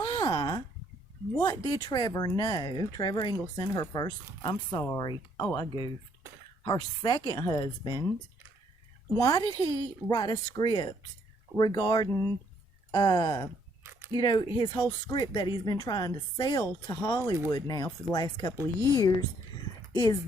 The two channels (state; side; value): normal; both; correlation 0.68